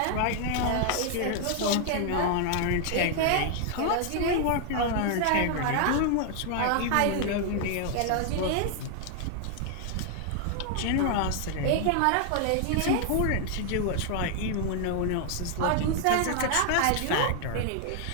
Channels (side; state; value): both; different; correlation 0.00